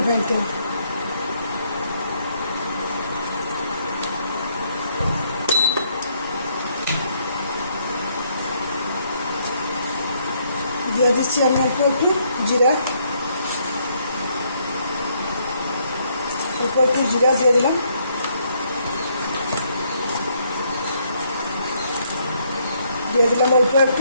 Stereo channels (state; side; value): inverted; both; correlation -0.71